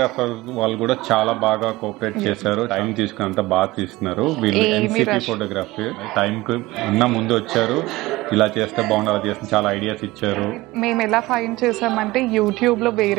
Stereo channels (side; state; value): left; quieter; 19.5 dB